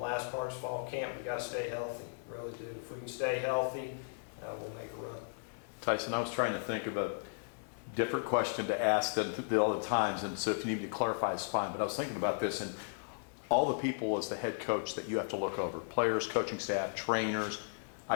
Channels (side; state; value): right; silent; digital silence